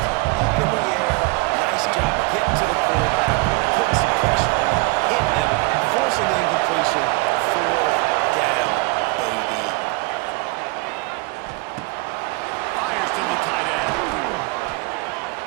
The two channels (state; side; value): quieter; left; 26.1 dB